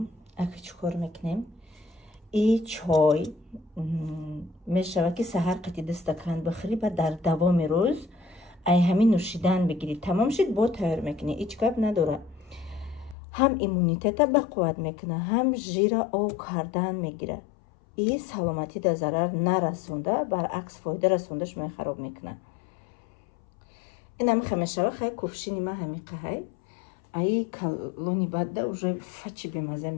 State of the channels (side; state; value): right; drops out; at 13.2 s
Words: اگه چکار میکنیم این چای میشه که سحر قطعی دستکان بخری و در دوام روز ای همین نوشیدن بگیرید. تمام شد با تیار میکنی، هیچ کار نداره. هم ایمونیتت به قوت میکنه، هم ژیر او کردن میگیره. این سلامتی در ضرر نرسونده، برعکس فایده رسوندش می خراب میکنه. این هم خمیشه خیلی کفشینی ما همین قهی ای کلونی بعد уже فچی بمزه